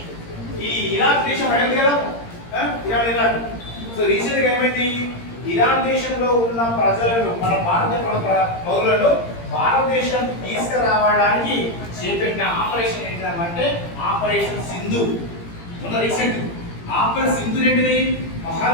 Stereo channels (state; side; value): late; right; 17 ms